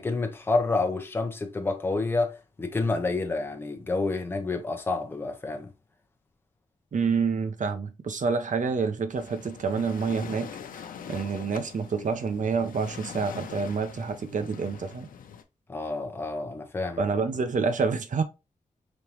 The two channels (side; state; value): both; normal; correlation 0.67